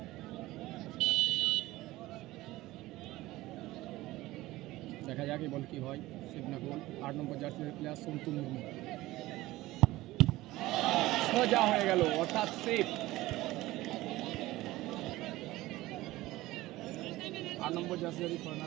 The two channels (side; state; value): left; quieter; 17.9 dB